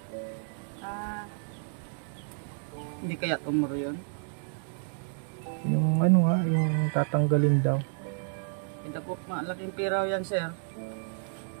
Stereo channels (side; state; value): left; silent; digital silence